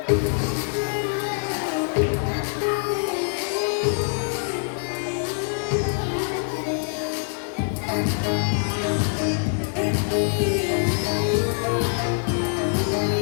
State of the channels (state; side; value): silent; right; 62 dB below the other